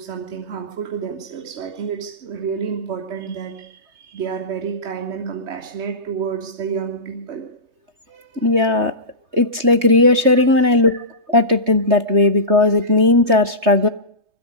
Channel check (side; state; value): left; late; 3.2 ms